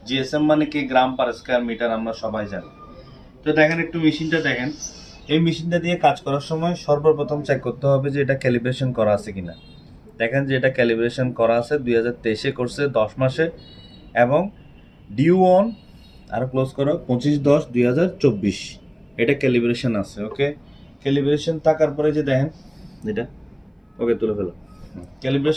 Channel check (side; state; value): both; identical; correlation 1.00